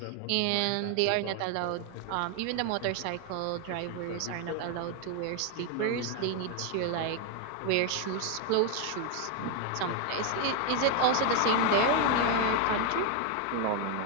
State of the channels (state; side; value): different; both; correlation 0.01